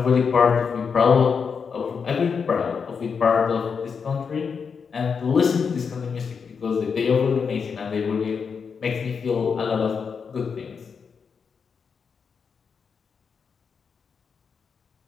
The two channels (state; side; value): quieter; right; 6.0 dB